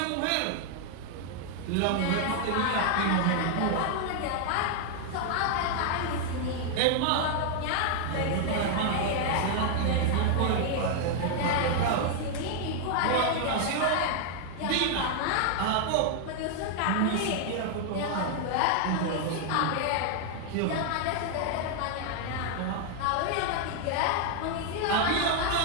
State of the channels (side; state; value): both; different; correlation 0.00